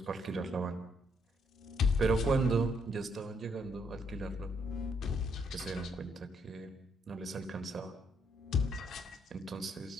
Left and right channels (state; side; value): normal; both; correlation 0.73